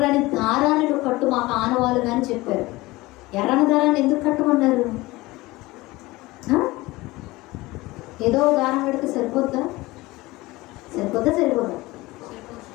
దారాన్ని కట్టు, మాకు ఆనవాళ్ళు కానీ చెప్పారు. ఎర్రని దారాన్ని ఎందుకు కట్టమన్నారు? ఏదో దారం పెడితే సరిపోద్దా? సరిపోదా?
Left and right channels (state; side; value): quieter; right; 20.3 dB